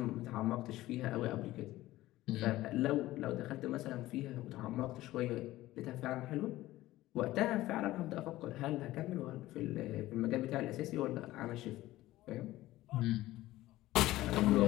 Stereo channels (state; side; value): quieter; right; 16.5 dB